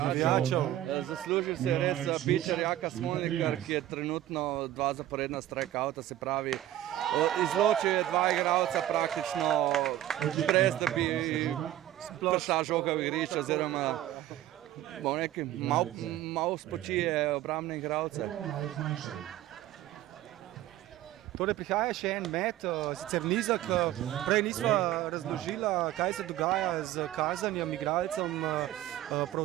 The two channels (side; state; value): left; quieter; 13.4 dB